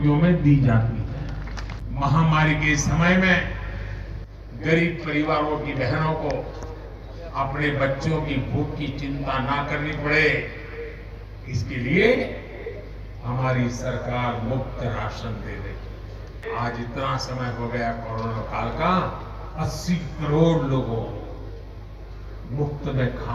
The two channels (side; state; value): both; identical; correlation 1.00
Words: में दी जाती है। महामारी के समय में गरीब परिवारों की बहनों को अपने बच्चों की भूख की चिंता ना करनी पड़े, इसके लिए हमारी सरकार मुफ्त राशन दे रही। आज इतना समय हो गया कोरोना काल का, 80 करोड़ लोगों को मुफ्त में